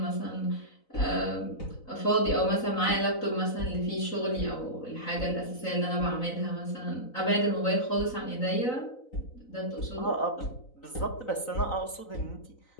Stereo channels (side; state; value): right; late; 4.0 ms